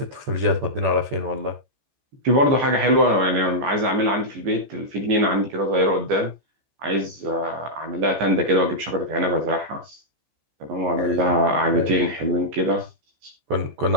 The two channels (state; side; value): late; left; 14 ms